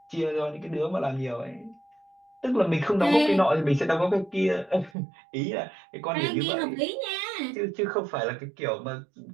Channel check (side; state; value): left; drops out; at 4.9 s